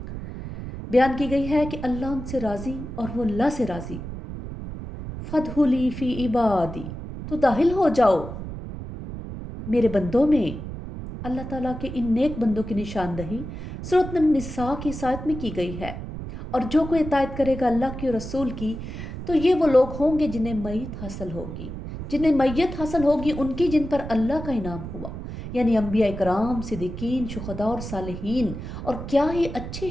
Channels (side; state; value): right; noise; rumble, 9 dB below the sound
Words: بیان کی گئی ہے کہ اللہ ان سے راضی اور وہ اللہ سے راضی۔ فَادْخُلِی فِی عِبَادِی، تو داخل ہو جاؤ میرے بندوں میں۔ اللہ تعالیٰ کے ان نیک بندوں کی نشاندہی سورۃ النساء کی اس آیت میں کی گئی ہے، اور جو کوئی اطاعت کرے گا اللہ کی اور رسول کی تو یہ وہ لوگ ہوں گے جنہیں میت حاصل ہوگی، جنہیں میت حاصل ہوگی ان کی جن پر اللہ کا انعام ہوا، یعنی انبیاء کرام، صدیقین، شہداء اور صالحین، اور کیا ہی اچھے